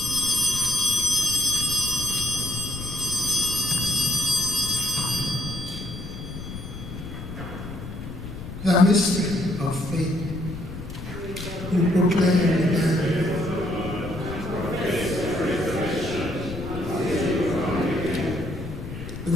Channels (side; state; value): left; noise; rumble, 10 dB below the sound